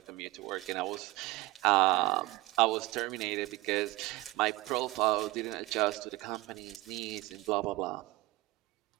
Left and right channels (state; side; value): quieter; left; 19.9 dB